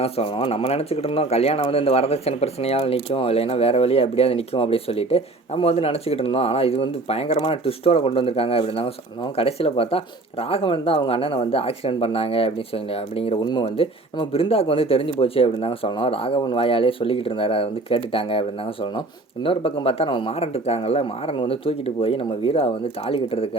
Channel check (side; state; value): left; quieter; 3.0 dB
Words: தான் சொல்லணும். நம்ம நினச்சிக்கிட்டு இருந்தோம் கல்யாணம் வந்து இந்த வரதட்சணை பிரச்சனையால் நிற்கும், இல்லைன்னா வேறு வழியாக எப்படியாவது நிற்கும் அப்படின்னு சொல்லிட்டு நம்ம வந்து நினச்சிக்கிட்டு இருந்தோம். ஆனால் இது வந்து பயங்கரமான ட்விஸ்ட்டோட கொண்டு வந்திருக்காங்க அப்படின்னு தாங்க சொல்லணும். கடைசியில் பார்த்தா ராகவன் தான் அவங்க அண்ணனை வந்து ஆக்சிடென்ட் பண்ணாங்க அப்படின்னு சொல்லி அப்படிங்கிற உண்மை வந்து நம்ம பிருந்தாவுக்கு வந்து தெரிஞ்சு போச்சு அப்படின்னு தாங்க சொல்லணும். ராகவன் வாயாலே சொல்லிக்கிட்டு இருந்தார், அதை வந்து கேட்டுட்டாங்க அப்படின்னு தாங்க சொல்லணும். இன்னொரு பக்கம் பார்த்தா நம்ம மாறன் இருக்காங்கல்ல, மாறன் வந்து தூக்கிட்டு போய் நம்ம வீரா வந்து தாலி